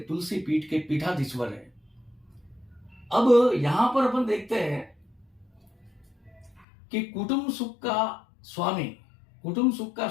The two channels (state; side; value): drops out; right; at 6.7 s